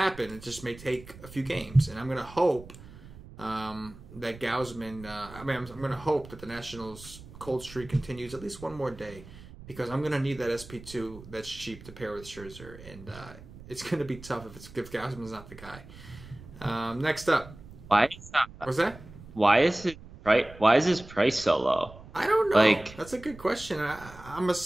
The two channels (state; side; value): noise; right; rumble, 17 dB below the sound